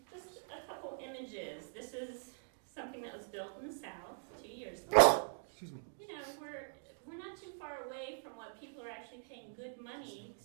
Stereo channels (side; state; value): left; silent; digital silence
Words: just a couple images. This is something that was built in the South 2 years ago. Excuse me. You know, we're not too far away from what people are actually paying good money